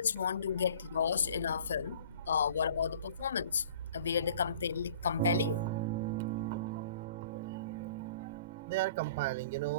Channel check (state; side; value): inverted; both; correlation -0.48